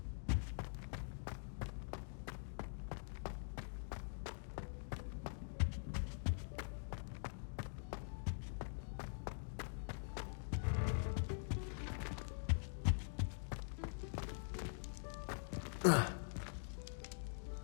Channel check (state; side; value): silent; right; digital silence